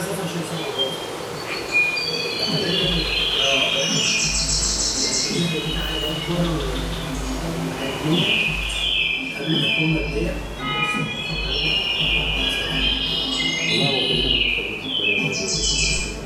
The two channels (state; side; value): identical; both; correlation 1.00